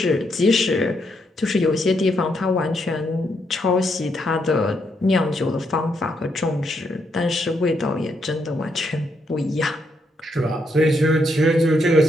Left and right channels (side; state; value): both; normal; correlation 0.77